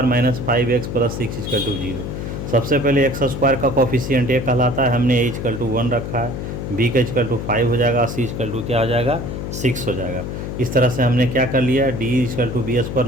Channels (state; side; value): noise; left; hum, 6 dB below the sound